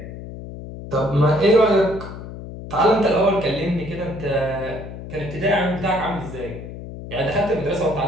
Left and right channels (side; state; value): left; noise; hum, 11 dB below the sound